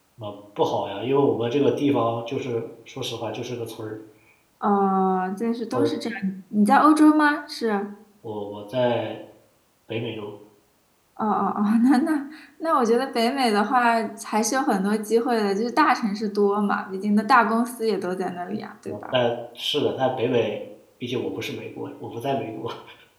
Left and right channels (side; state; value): both; identical; correlation 1.00